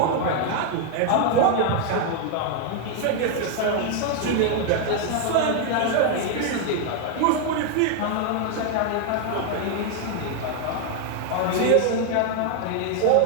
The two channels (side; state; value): both; different; correlation 0.00